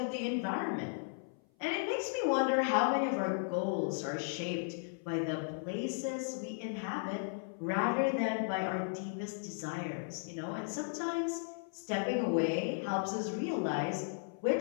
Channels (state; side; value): silent; right; 54 dB below the other